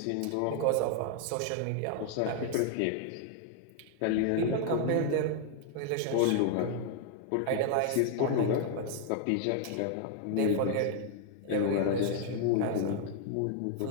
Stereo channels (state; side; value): different; both; correlation 0.00